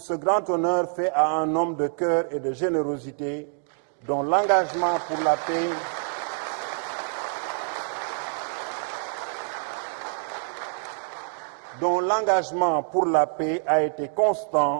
grand honneur fait à un homme de cœur et de générosité dont l'engagement pour la paix a été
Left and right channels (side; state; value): left; silent; 59 dB below the other